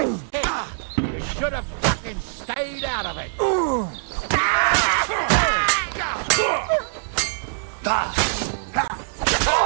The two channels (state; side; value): silent; left; digital silence